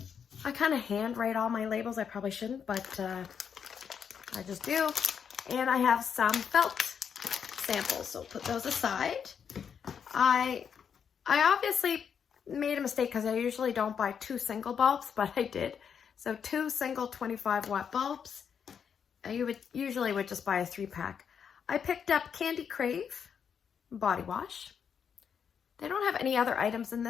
I kind of handwrite all my labels. I probably shouldn't, but I just do. And I have some felt samples, so put those aside. I obviously made a mistake because I usually don't buy 2 single bulbs, but I did. So 2 single 25 watt bulbs. You would usually just buy a 3-pack. I picked up Candy Crave body wash. They don't have any other items in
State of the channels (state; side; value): quieter; right; 7.3 dB